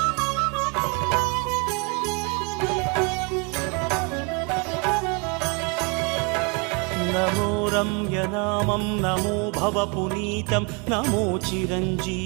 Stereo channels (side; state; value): left; quieter; 32.5 dB